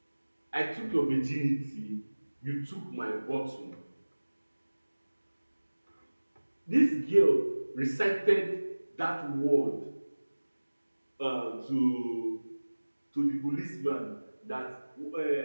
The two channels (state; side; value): inverted; both; correlation -1.00